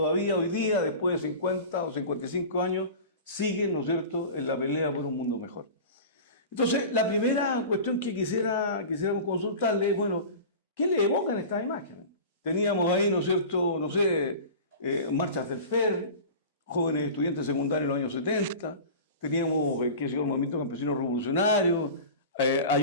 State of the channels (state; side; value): inverted; both; correlation -0.34